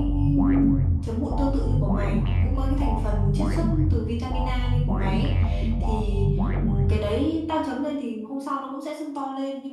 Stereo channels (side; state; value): both; identical; correlation 1.00